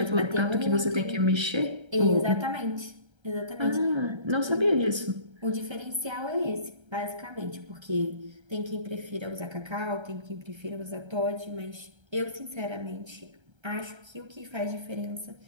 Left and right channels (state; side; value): late; left; 1.3 ms